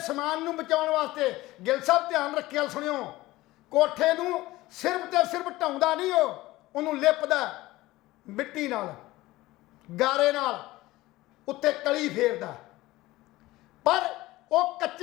ਸਮਾਨ ਨੂੰ ਬਚਾਉਣ ਵਾਸਤੇ, ਗਿੱਲ ਸਾਹਿਬ ਧਿਆਨ ਰੱਖਿਆ ਸੁਣਿਓ, ਕੋਠੇ ਨੂੰ ਸਿਰਫ ਤੇ ਸਿਰਫ ਢਾਉਂਦਾ ਨਹੀਂ, ਉਹਨੂੰ ਲਿਪਦਾ ਮਿੱਟੀ ਨਾਲ, ਗਾਰੇ ਨਾਲ, ਉੱਤੇ ਕਲੀ ਫੇਰਦਾ। ਪਰ ਉਹ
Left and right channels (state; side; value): quieter; right; 18.3 dB